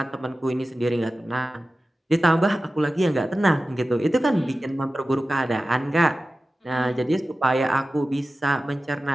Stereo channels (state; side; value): normal; both; correlation 0.95